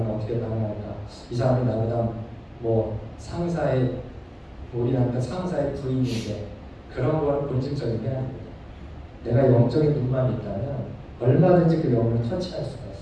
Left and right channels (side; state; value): both; identical; correlation 1.00